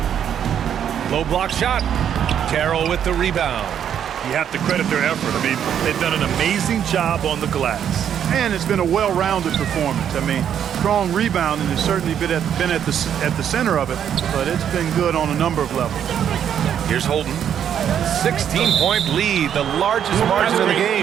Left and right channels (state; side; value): quieter; left; 9.1 dB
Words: Low block shot. Carroll with the rebound. You have to credit their effort. I mean, they've done an amazing job on the glass. And it's been a well-rounded performance. I mean, strong rebounding has certainly been at the center of it, but it's been good on a number of levels. Here's Holden. 16-point lead, the largest margin of the